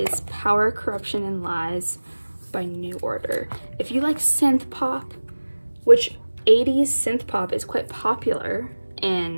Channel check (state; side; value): inverted; both; correlation -1.00